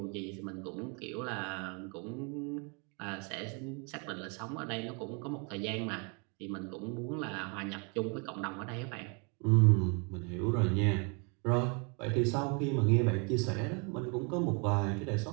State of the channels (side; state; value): left; quieter; 34.4 dB